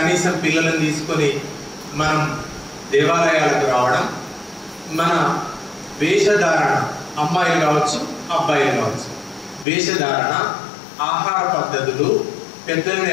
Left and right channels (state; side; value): drops out; right; at 9.7 s